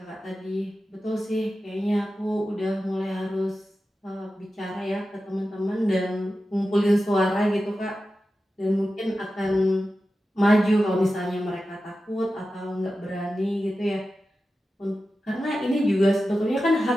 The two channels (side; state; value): both; normal; correlation 0.93